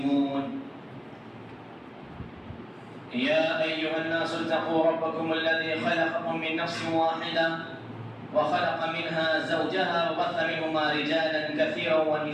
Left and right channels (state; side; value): identical; both; correlation 1.00